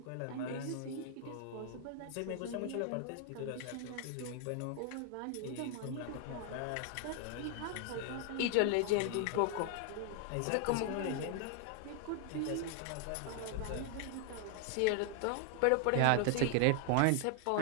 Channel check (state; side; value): different; both; correlation 0.00